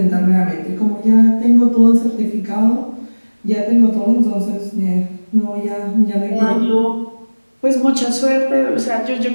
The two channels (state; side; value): inverted; both; correlation -1.00